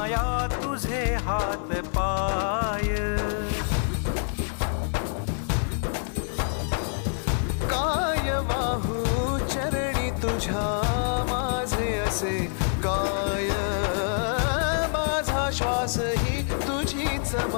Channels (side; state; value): right; silent; 57 dB below the other